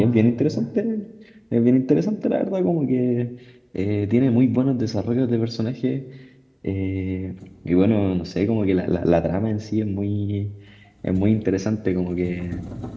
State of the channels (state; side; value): identical; both; correlation 1.00